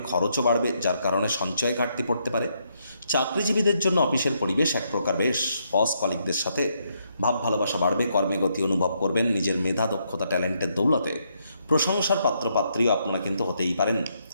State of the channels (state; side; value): inverted; both; correlation -0.76